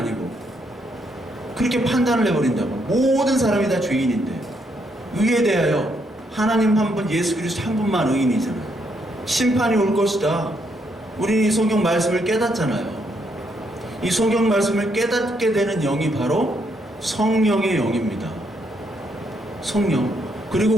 그렇게 판단을 해버린다고. 모든 사람이 다 죄인인데, 의에 대하여 하나님 한 분, 예수 그리스도 한 분만 의인이잖아요. 심판이 올 것이다. 우리는 이 성경 말씀을 깨닫잖아요. 이 성경 말씀을 깨닫게 되는 영이 바로 성령의 영입니다. 성령. 그리고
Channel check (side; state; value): both; normal; correlation 0.75